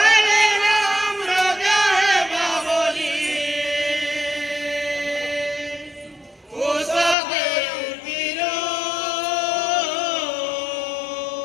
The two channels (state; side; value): drops out; right; at 7.2 s